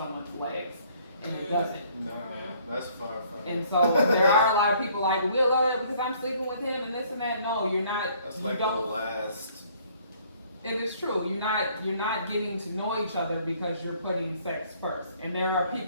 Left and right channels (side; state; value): both; inverted; correlation -0.61